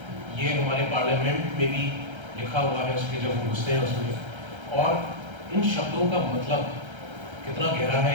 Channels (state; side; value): late; left; 1.3 ms